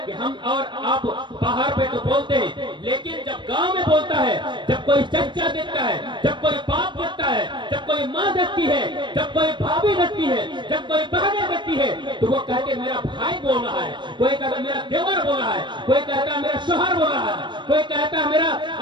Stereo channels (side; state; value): left; late; 0.23 ms